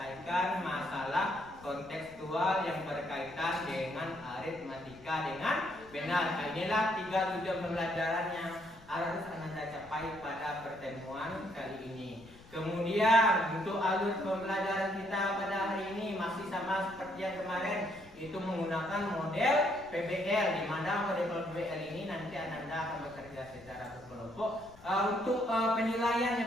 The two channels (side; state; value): left; noise; rumble, 23 dB below the sound